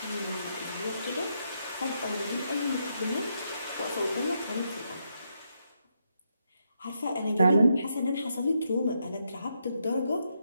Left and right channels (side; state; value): both; inverted; correlation -0.80